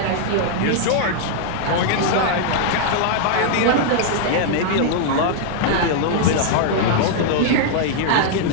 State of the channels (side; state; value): both; different; correlation -0.01